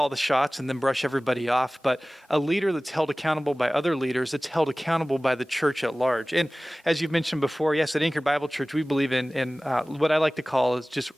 the shots and then brush everybody off, but a leader that's held accountable by other leaders, that's held accountable by the church at large. And as you've mentioned before, yes, at Anchored Bible Church, we believe in what I like to call is just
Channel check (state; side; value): normal; both; correlation 0.98